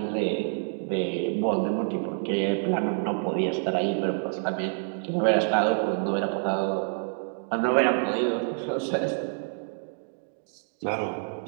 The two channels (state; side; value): silent; left; digital silence